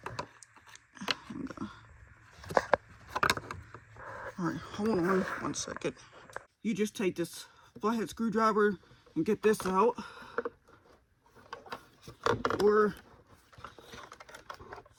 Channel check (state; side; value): identical; both; correlation 1.00